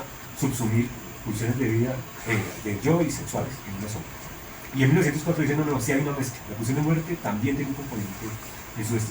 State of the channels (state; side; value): identical; both; correlation 1.00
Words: subsumir pulsiones de vida de yo y sexuales en una sola. Y en 1904 dice: no, sí hay una mezcla. La pulsión de muerte también tiene un componente en su